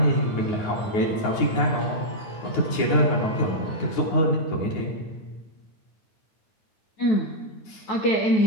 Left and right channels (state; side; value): late; right; 9.5 ms